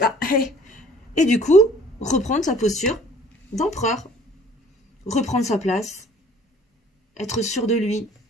Ah, hey. Et du coup, reprendre sa posture d'empereur. Reprendre sa place. Être sûr de lui.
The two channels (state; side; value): normal; both; correlation 0.54